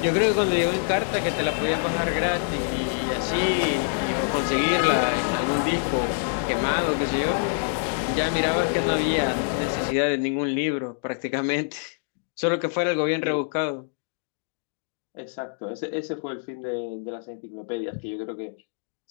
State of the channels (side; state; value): right; silent; digital silence